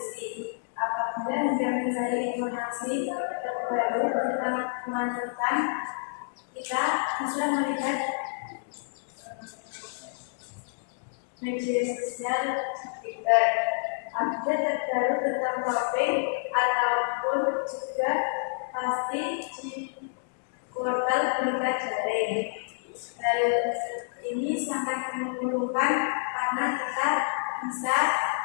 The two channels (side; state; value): right; silent; digital silence